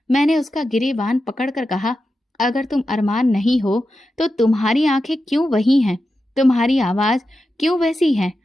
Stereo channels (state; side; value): normal; both; correlation 0.90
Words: मैंने उसका गिरेबान पकड़कर कहा, अगर तुम अरमान नहीं हो तो तुम्हारी आंखें क्यों वही हैं, तुम्हारी आवाज क्यों वैसी है?